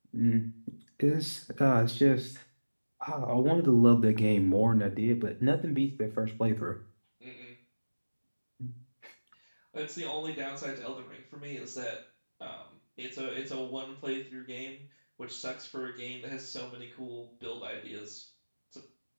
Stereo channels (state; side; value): inverted; both; correlation -1.00